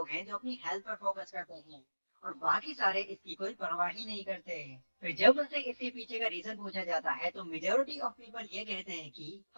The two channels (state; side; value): inverted; both; correlation -1.00